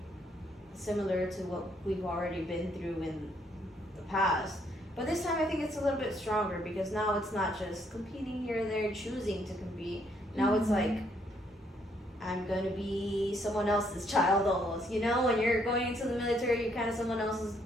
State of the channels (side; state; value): both; normal; correlation 0.70